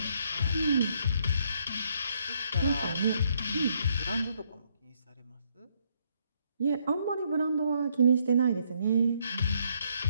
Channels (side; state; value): both; inverted; correlation -0.72